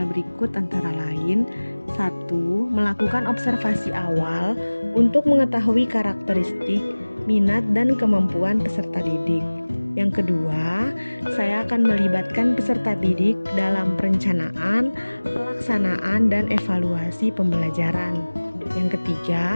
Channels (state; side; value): inverted; both; correlation -1.00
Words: berikut antara lain. 1. Melakukan observasi awal untuk mengetahui karakteristik, minat, dan kemampuan peserta didik. Yang kedua, saya akan melibatkan peserta didik dalam perencanaan, pelaksanaan, dan evaluasi pembelajaran. Yang